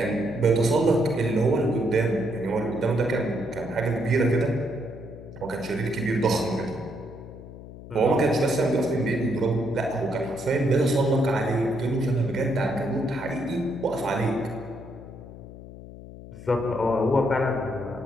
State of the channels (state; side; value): noise; left; hum, 15 dB below the sound